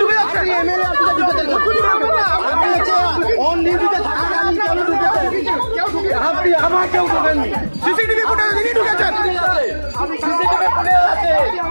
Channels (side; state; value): both; inverted; correlation -1.00